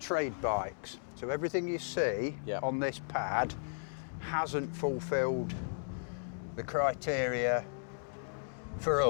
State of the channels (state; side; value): silent; right; digital silence